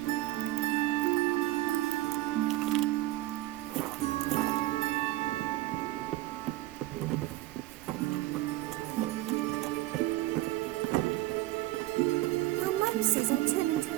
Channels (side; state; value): left; quieter; 17.0 dB